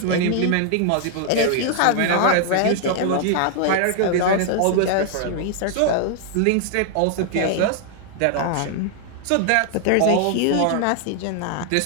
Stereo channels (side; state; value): both; different; correlation 0.00